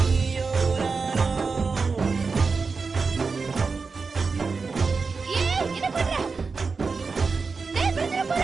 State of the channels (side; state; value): left; quieter; 4.6 dB